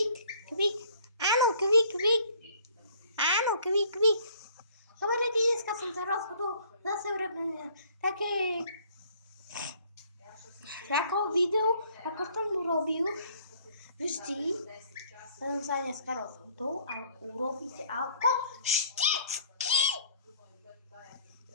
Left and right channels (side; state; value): both; inverted; correlation -0.57